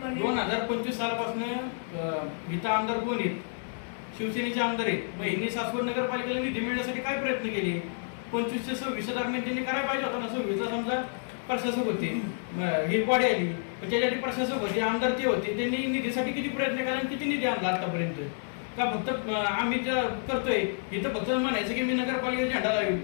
2025 सालापासून इथं आमदार कोण आहेत? शिवसेनेचे आमदार आहेत. मग यांनी सासवड नगरपालिकेला निधी मिळण्यासाठी काय प्रयत्न केले? 25 ते 26 दरम्यान त्यांनी करायला पाहिजे होता ना. 26ला समजा प्रशासक होते, ही बॉडी आली, त्याच्यासाठी प्रशासक होते, आमदार ते होते, त्यांनी निधीसाठी किती प्रयत्न केला आणि किती निधी आणला आतापर्यंत? का फक्त आम्ही ज्या करतोय इथं फक्त म्हणायचं की मी नगरपालिकेचा झेंडा लावेल.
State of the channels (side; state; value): right; silent; digital silence